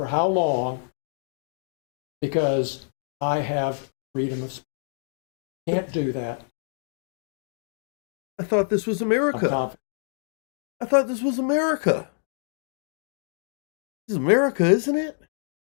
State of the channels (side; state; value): right; silent; digital silence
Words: how long, because I have freedom of speech. Can't do that. I thought this was I'm America. confident. I thought this was America. This is America, isn't it?